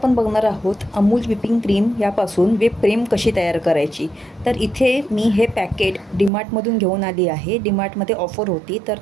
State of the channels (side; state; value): left; drops out; at 6.3 s